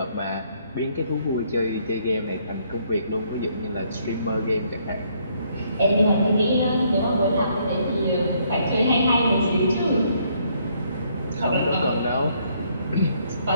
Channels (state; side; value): inverted; both; correlation -0.69